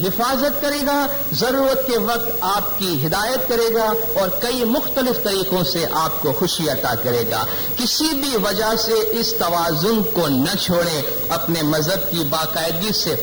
حفاظت کرے گا، ضرورت کے وقت آپ کی ہدایت کرے گا اور کئی مختلف طریقوں سے آپ کو خوشی عطا کرے گا۔ کسی بھی وجہ سے اس توازن کو نہ چھوڑیں، اپنے مذہب کی باقاعدگی سے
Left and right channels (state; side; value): identical; both; correlation 1.00